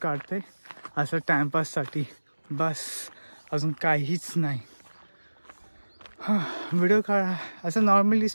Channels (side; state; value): both; inverted; correlation -1.00